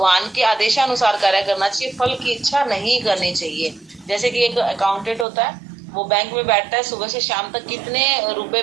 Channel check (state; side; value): drops out; left; at 5.2 s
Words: के आदेशानुसार कार्य करना चाहिए, फल की इच्छा नहीं करनी चाहिए। जैसे कि एक अकाउंटेंट होता है, वो बैंक में बैठता है, सुबह से शाम तक कितने रुपए